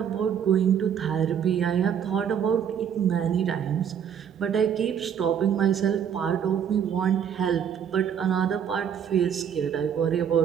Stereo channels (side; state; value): left; quieter; 8.4 dB